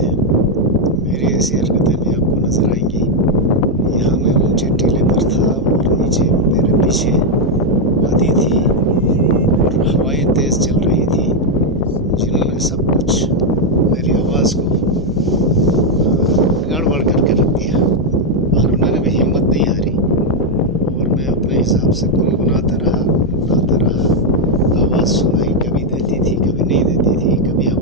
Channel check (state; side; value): normal; both; correlation 0.01